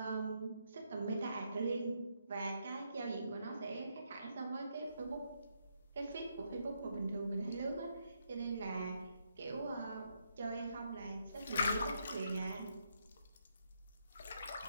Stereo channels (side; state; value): both; inverted; correlation -0.78